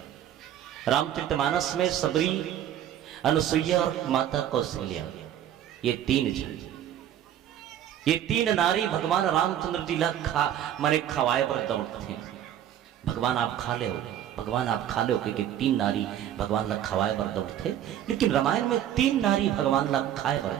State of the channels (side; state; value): left; quieter; 10.9 dB